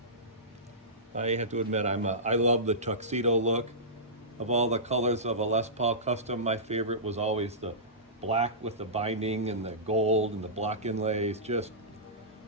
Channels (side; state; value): both; normal; correlation -0.19